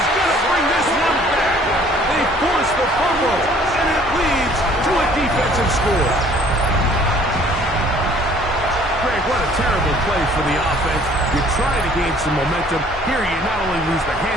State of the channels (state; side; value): normal; both; correlation 0.56